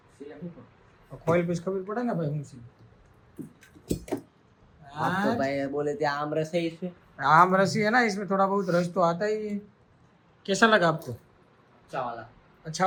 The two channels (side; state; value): both; identical; correlation 1.00